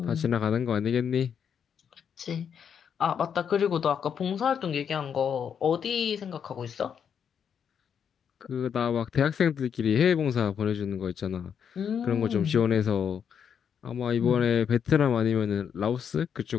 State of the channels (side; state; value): right; quieter; 7.7 dB